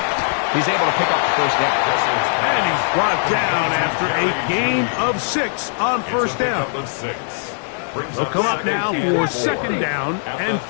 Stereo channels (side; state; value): right; silent; 66 dB below the other